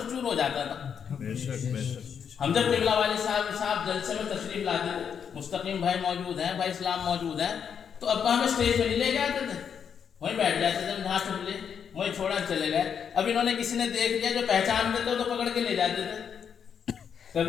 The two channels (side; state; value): right; quieter; 7.5 dB